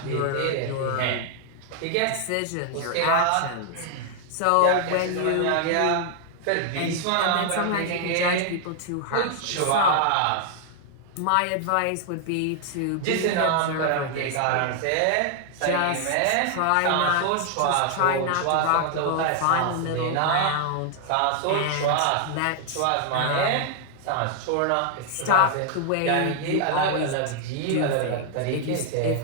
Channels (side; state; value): both; different; correlation 0.00